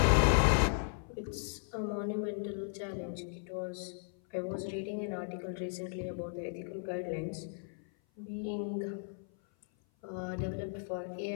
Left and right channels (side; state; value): right; silent; 54 dB below the other